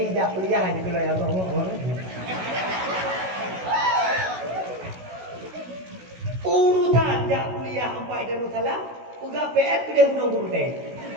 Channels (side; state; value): left; late; 16 ms